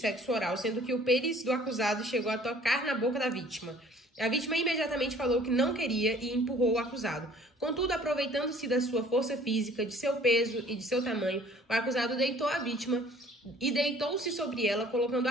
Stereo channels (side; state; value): both; normal; correlation 0.54